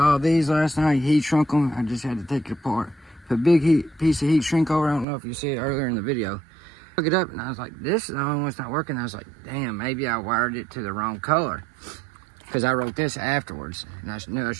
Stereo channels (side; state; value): left; drops out; at 5.1 s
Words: these last night, heat shrunk them. I just had to take it apart. Put a big piece of heat shrink over. I don't know if you see it earlier in the video. Look it up and I was like, this is the only one's not working. I was like, damn, maybe I wired it to the wrong color. Because I wrote this afterwards and I knew I